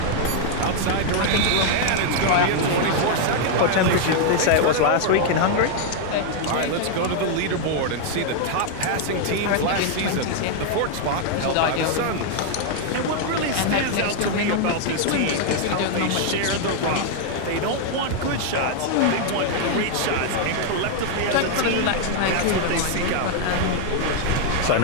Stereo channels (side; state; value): both; different; correlation 0.00